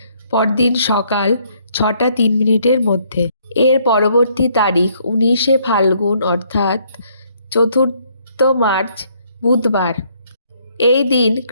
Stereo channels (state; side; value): inverted; both; correlation -0.67